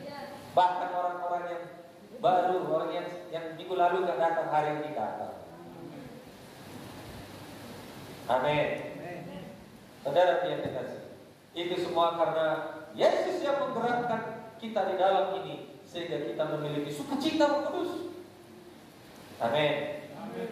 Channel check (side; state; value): both; identical; correlation 1.00